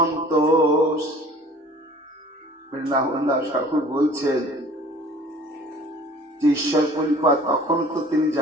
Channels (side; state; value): both; normal; correlation 0.48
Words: বৃন্দাবন দাস ঠাকুর বলছেন যে ঈশ্বর পরিপাদ তখন তো তিনি